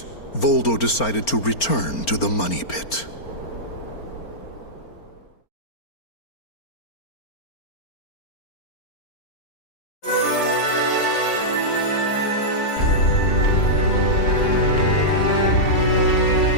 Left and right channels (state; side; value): late; right; 4.4 ms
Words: Voldo decided to return to the money pit.